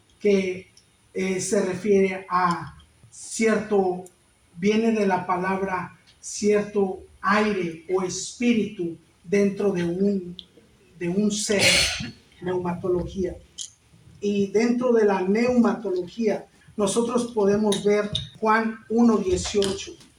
que se refiere a cierto, viene de la palabra cierto aire o espíritu dentro de un ser, neumatología. Y dentro de la neumatología nosotros podemos ver Juan 1:18,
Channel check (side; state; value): both; identical; correlation 1.00